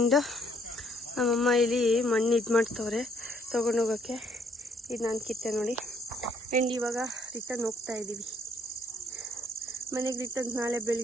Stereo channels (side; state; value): both; normal; correlation 0.67